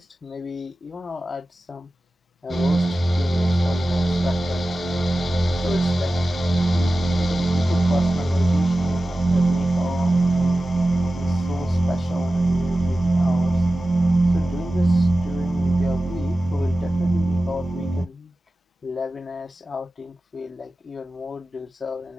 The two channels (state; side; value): normal; both; correlation 0.95